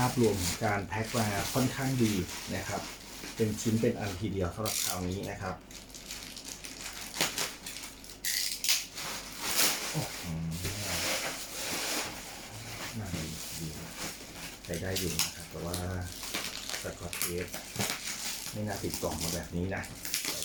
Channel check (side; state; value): both; identical; correlation 1.00